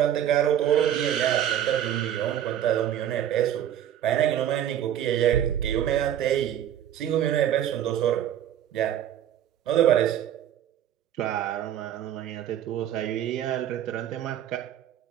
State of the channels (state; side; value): quieter; left; 10.7 dB